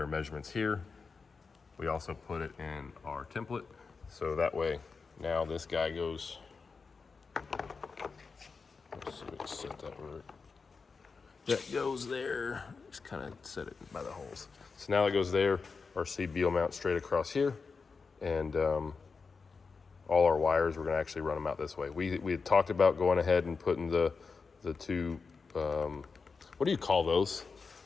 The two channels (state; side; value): quieter; right; 4.8 dB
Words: our measurements here. We also put it in our template, so that way now this guy goes, let's see if we can set that right. That goes there, just kind of set it by the holes. So now it goes there, our CB will mount straight across here, and all our wires, we're gonna actually run them out this way. We had talked about going ahead and putting the two, what do you call those?